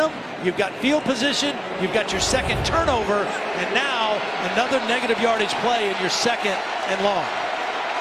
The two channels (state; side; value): identical; both; correlation 1.00